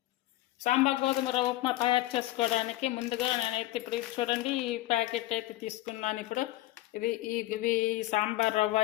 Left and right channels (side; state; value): right; quieter; 16.6 dB